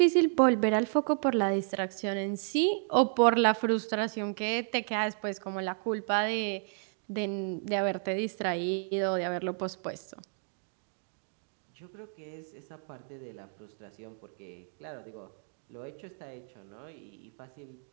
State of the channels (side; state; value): left; silent; 56 dB below the other